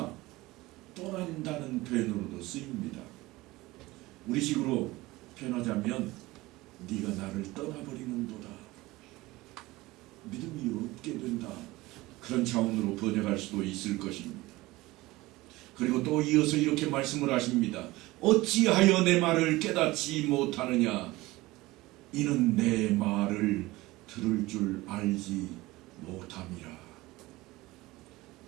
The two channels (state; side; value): quieter; left; 19.7 dB